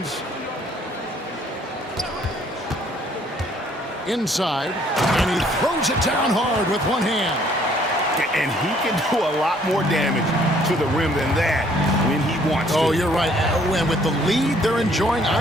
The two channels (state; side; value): normal; both; correlation 0.62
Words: Inside. And he throws it down hard with one hand. And he can do a lot more damage to the rim than that when he wants to. Oh, you're right. And with the lead they're enjoying,